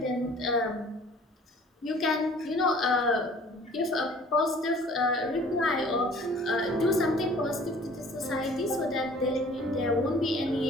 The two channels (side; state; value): both; normal; correlation 0.51